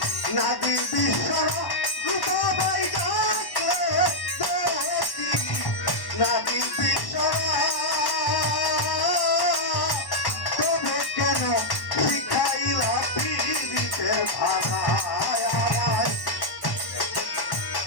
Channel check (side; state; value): right; late; 1.1 ms